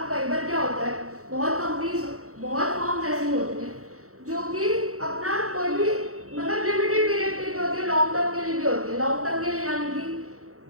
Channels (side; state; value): left; late; 0.65 ms